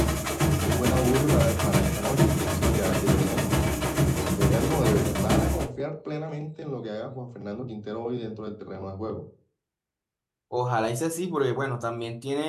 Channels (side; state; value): both; identical; correlation 1.00